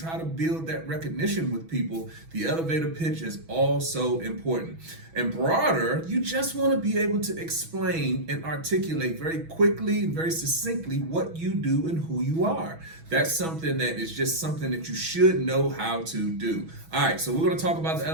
to build that recognition with people. The elevator pitch is also important. And broader, you just want to be able to explain and articulate very quickly and very succinctly what you do and who you are. That's something that is just something that you should know how to do. All right, so we're going to talk about the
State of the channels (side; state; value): left; late; 6.1 ms